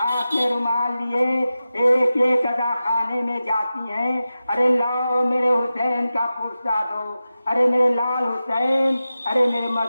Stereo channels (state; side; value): inverted; both; correlation -0.93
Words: میں رومال لیے ایک ایک ادا خانے میں جاتی ہیں، ارے لاؤ میرے حسین کا پرسہ دو، ارے میرے لال حسین، ارے میرے